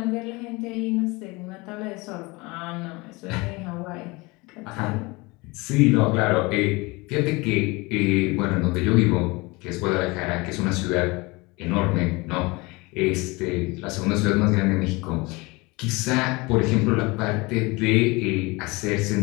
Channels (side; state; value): right; quieter; 24.6 dB